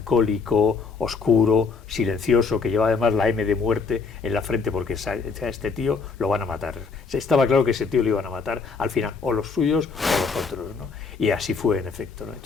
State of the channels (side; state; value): right; quieter; 4.9 dB